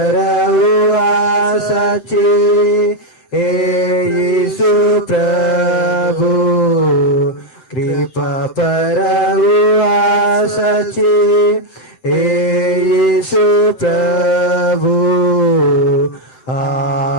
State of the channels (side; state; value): right; late; 7.7 ms